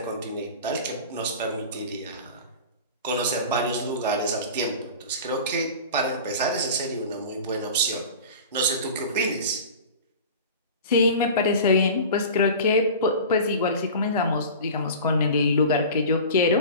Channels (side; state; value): both; inverted; correlation -0.35